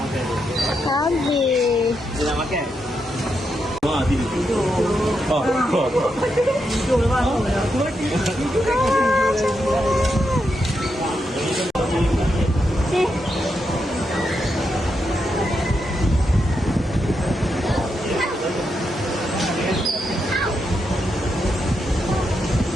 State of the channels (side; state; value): both; normal; correlation 0.83